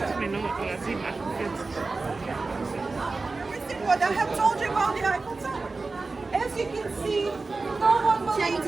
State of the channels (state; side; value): quieter; left; 3.8 dB